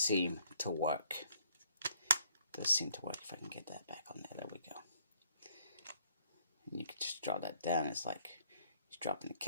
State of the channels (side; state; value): both; inverted; correlation -0.63